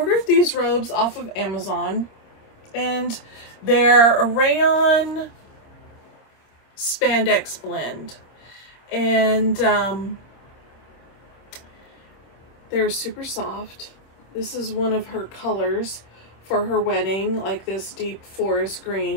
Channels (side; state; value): right; late; 26 ms